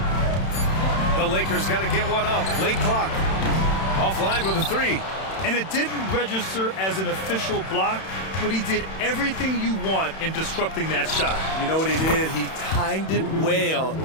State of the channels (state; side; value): late; right; 31 ms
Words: The Lakers got to get one up. Late clock. Offline with a 3. And it didn't register as an official block, but he did everything you want in disrupting that shot. You know what he did? He timed it well